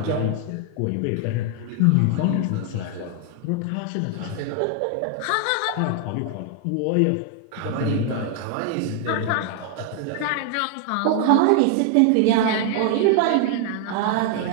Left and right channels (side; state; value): both; different; correlation 0.00